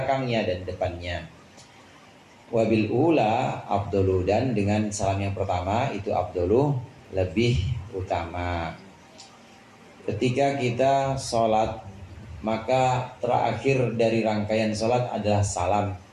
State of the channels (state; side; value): identical; both; correlation 1.00